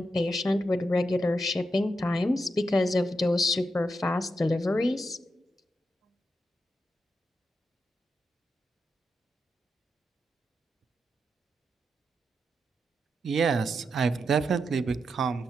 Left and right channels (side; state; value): both; normal; correlation 0.85